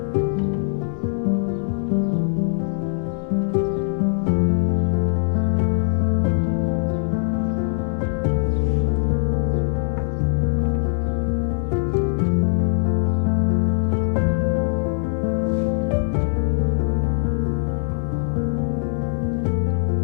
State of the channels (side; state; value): right; silent; 60 dB below the other